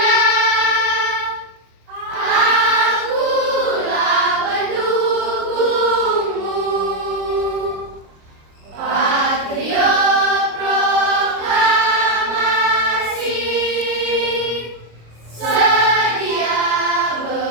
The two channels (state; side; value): late; left; 26 ms